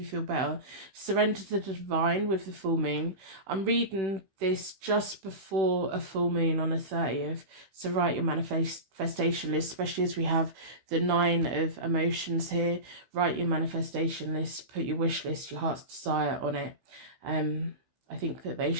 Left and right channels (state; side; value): late; left; 16 ms